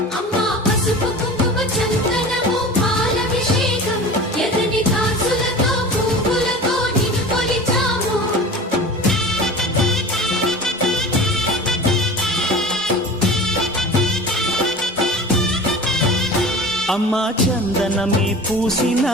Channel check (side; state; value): both; normal; correlation 0.36